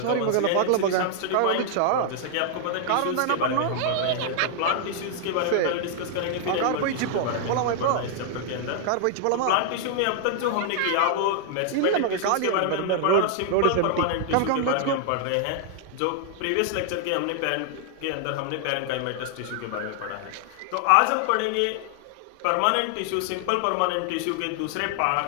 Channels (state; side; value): different; both; correlation 0.00